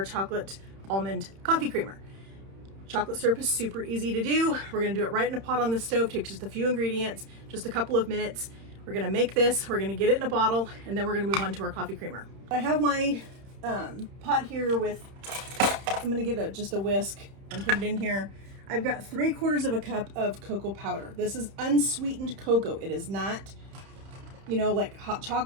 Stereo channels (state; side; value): late; left; 31 ms